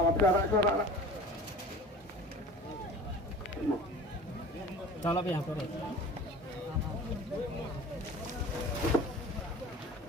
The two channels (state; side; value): normal; both; correlation 0.41